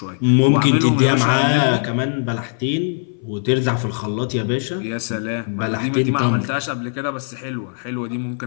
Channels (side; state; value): right; silent; 58 dB below the other